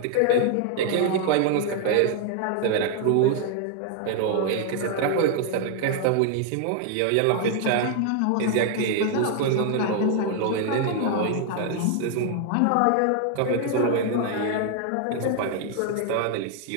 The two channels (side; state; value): both; different; correlation 0.00